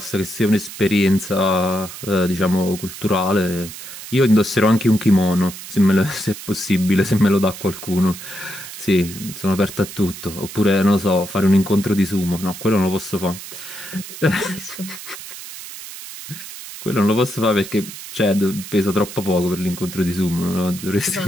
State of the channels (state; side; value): noise; right; hiss, 12 dB below the sound